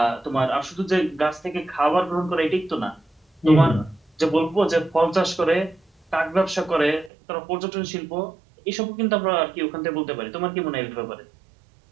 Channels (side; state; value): left; drops out; at 7.1 s